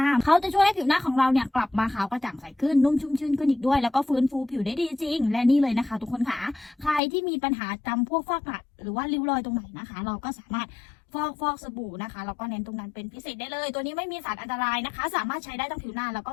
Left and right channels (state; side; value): drops out; right; at 7.0 s